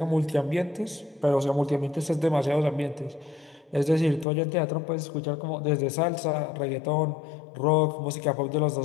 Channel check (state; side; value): drops out; right; at 4.2 s